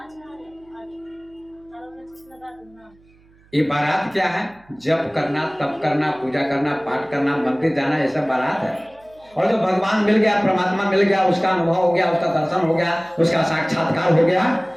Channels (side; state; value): right; noise; hum, 30 dB below the sound